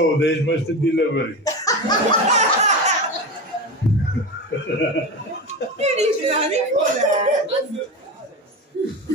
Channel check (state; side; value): normal; both; correlation 0.23